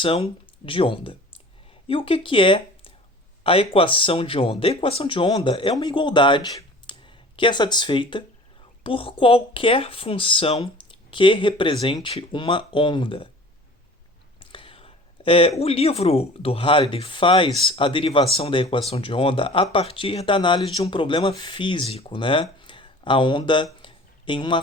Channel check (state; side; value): normal; both; correlation 0.44